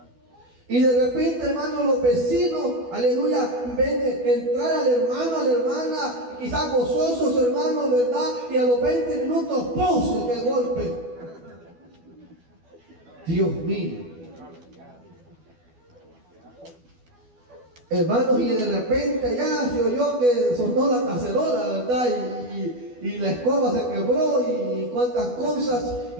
Y de repente, hermano, los vecinos, aleluya, ven entrar al hermano, a la hermana, quizás gozosos, hermanos, ¿verdad? Y a los 20 minutos, ¡pum!, se cae el golpe. Dios mío. Hermanos, y de repente ya se oyó que sonó la cacerola, ¿verdad? Y la escoba se quebró y cuantas cosas,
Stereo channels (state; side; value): late; left; 12 ms